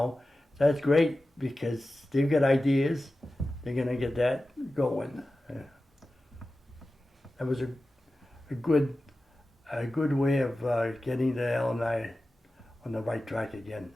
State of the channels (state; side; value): normal; both; correlation 0.94